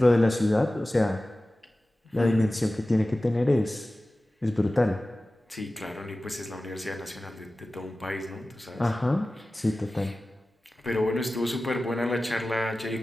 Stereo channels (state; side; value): normal; both; correlation 0.96